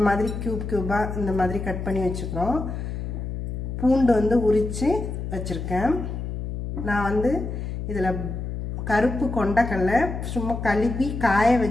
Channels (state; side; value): noise; left; hum, 5 dB below the sound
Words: மாதிரி கியூபா இந்த மாதிரி கட் பண்ணி வச்சுக்கிறோம். பூண்டு வந்து உரிச்சு வச்சிருக்கேன். நான் வந்து இதில் கருப்பு கொண்டக்கடலை சும்மா கழுவி காய